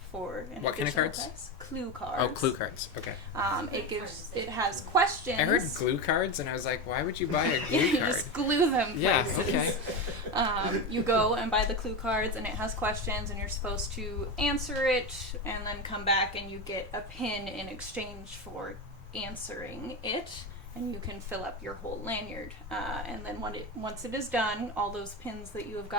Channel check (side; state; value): both; normal; correlation 0.18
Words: for an What kind of additional cards? price. Clue cards. Oh, clue cards. Okay. It has questions. I heard glue cards, and I was like, why would you buy a glue You card? just glue them. Yeah. places. Okay. You go and buy the clue cards, and it has questions, and you're supposed to answer it, and then come back, and you get a pin in exchange for answering it, and you can fill up your whole lanyard. And then once it is done, all those pins that you have